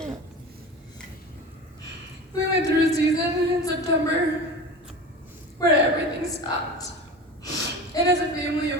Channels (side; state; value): both; normal; correlation 0.32